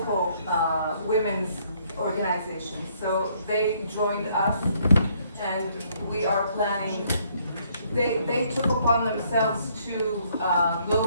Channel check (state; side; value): inverted; both; correlation -0.68